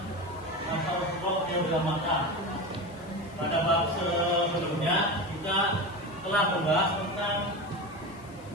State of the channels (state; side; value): noise; left; hiss, 25 dB below the sound